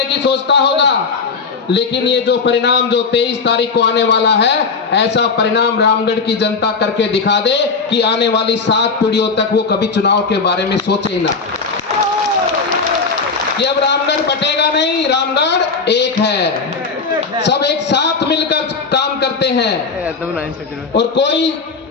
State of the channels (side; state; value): right; quieter; 4.7 dB